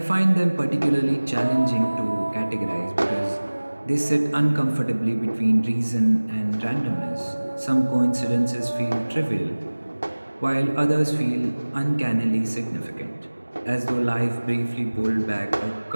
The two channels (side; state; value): both; inverted; correlation -1.00